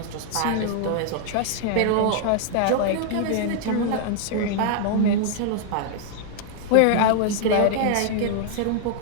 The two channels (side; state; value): both; different; correlation 0.00